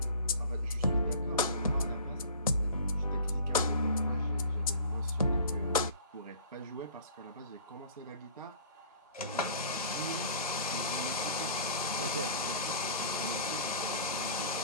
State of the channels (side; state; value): both; inverted; correlation -0.45